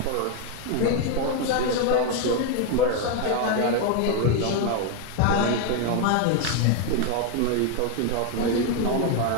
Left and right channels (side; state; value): both; different; correlation 0.01